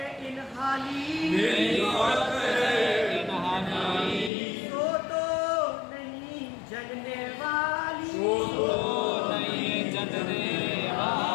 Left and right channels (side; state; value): right; drops out; at 4.3 s